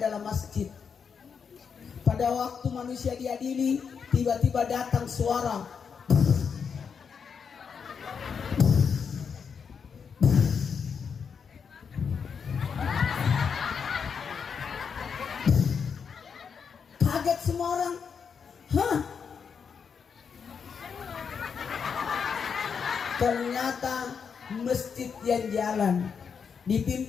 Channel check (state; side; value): quieter; right; 6.4 dB